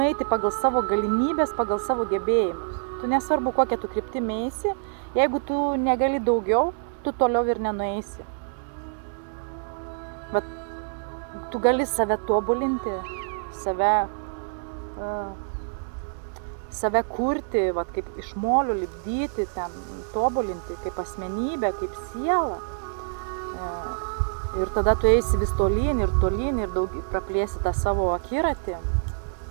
pagal savo galimybės, pagal savo gebėjimus. Tu nesvarbu, kokią tu kryptį eisi, jeigu tu negali daugiau, tu toliau ir nenueisi. Bet tu gali save tobulinti, save kurti, kaip iš molių lipdyti, ten tobulinti kaip asmenybę, kaip sielą. Ir tada tu eisi vis tolyn ir praplėsi tą savo akiratį,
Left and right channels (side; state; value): left; silent; digital silence